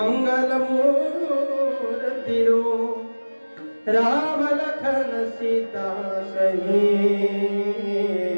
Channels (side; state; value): both; inverted; correlation -1.00